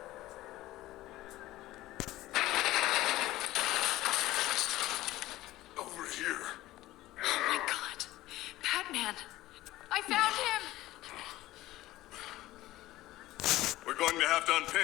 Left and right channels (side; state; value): right; quieter; 16.6 dB